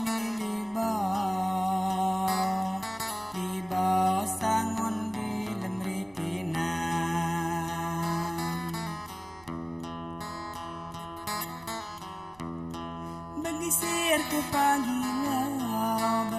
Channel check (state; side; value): noise; right; rumble, 27 dB below the sound